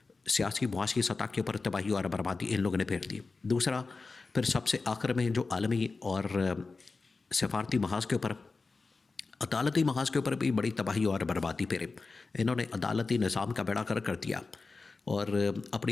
سیاسی معاشی سطح کے اوپر تباہی اور بربادی ان لوگوں نے پھیر دی۔ دوسرا پھر سب سے آخر میں جو عالمی اور سفارتی محاذ کے اوپر، عدالتی محاذ کے اوپر بھی بڑی تباہی اور بربادی پھیرے۔ انہوں نے عدالتی نظام کا بیڑا کر دیا، اور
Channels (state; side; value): quieter; right; 4.0 dB